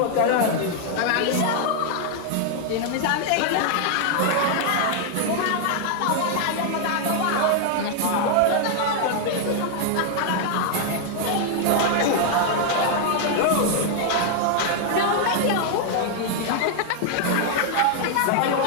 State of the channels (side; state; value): both; different; correlation 0.00